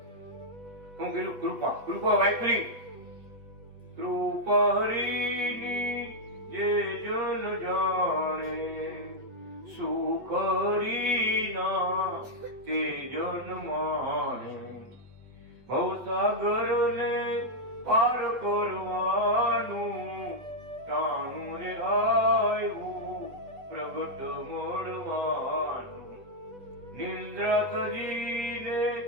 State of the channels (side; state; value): left; late; 8.3 ms